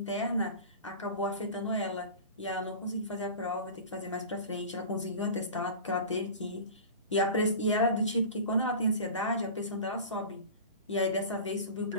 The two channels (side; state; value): both; inverted; correlation -0.35